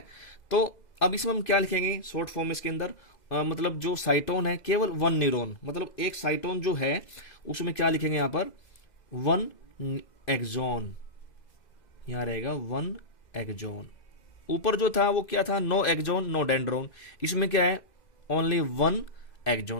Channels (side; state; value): right; late; 2.0 ms